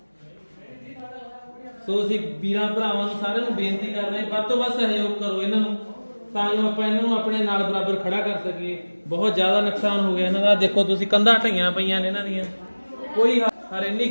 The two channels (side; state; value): both; inverted; correlation -1.00